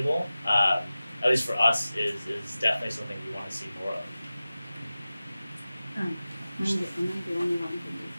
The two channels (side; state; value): both; inverted; correlation -0.96